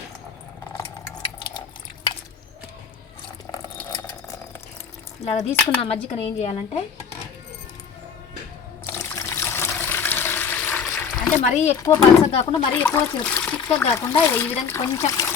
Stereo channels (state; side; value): quieter; right; 6.6 dB